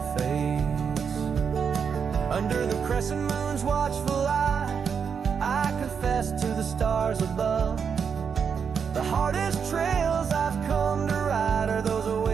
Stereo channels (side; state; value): left; quieter; 6.6 dB